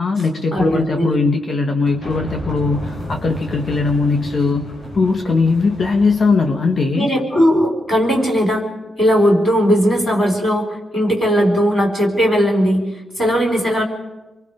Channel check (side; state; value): both; normal; correlation 0.82